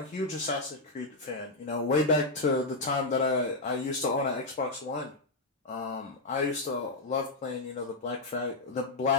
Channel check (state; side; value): quieter; right; 3.0 dB